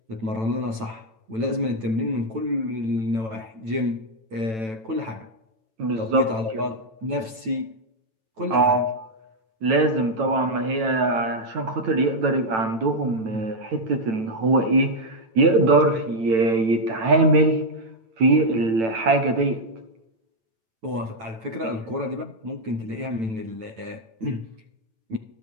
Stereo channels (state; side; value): late; left; 9.0 ms